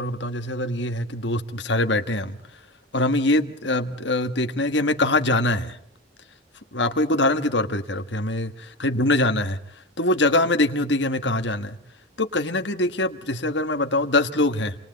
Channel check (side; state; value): both; normal; correlation 0.21